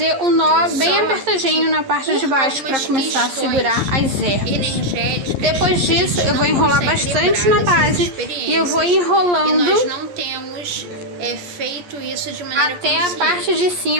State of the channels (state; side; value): late; left; 11 ms